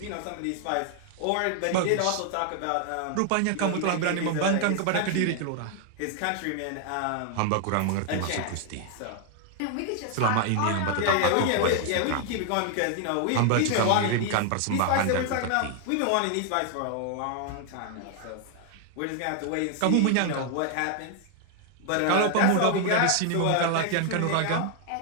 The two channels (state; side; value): different; both; correlation 0.00